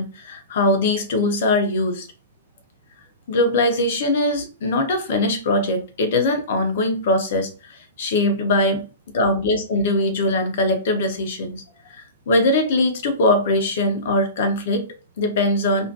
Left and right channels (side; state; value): both; inverted; correlation -0.32